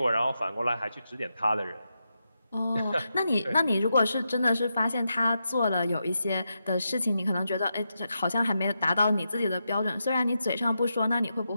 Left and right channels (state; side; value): inverted; both; correlation -0.86